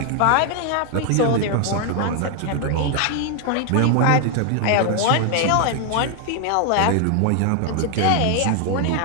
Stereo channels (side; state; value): both; different; correlation 0.00